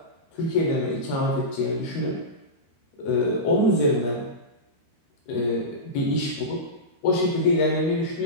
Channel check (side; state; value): right; late; 13 ms